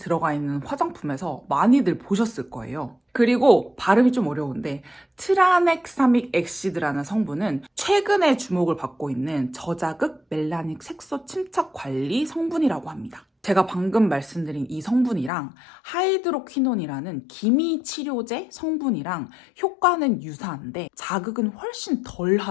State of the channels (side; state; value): right; drops out; at 15.3 s